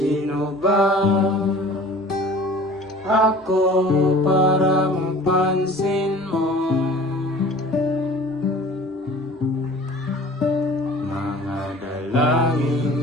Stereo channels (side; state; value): both; normal; correlation 0.45